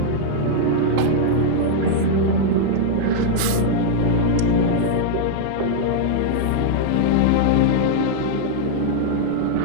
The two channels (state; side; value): different; both; correlation -0.01